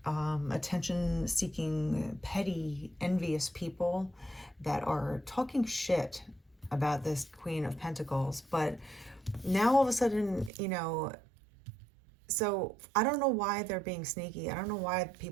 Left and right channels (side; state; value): left; drops out; at 10.5 s